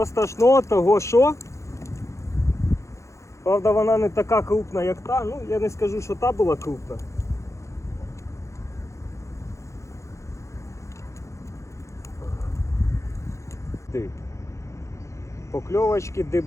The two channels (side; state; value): right; late; 0.14 ms